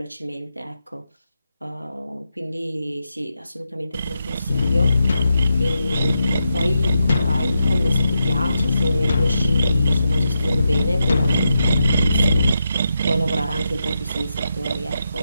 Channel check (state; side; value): inverted; both; correlation -0.85